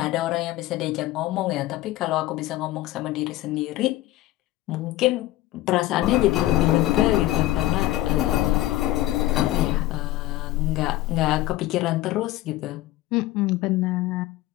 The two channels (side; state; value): right; quieter; 16.2 dB